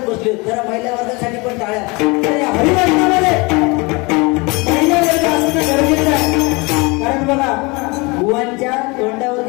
बसले. जरा महिला वर्गासाठी पण टाळ्या. हरिवर्गामध्ये महिला वर्ग असणं गरजेचं आहे. कारण बघा बुवांच्या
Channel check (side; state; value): right; quieter; 26.8 dB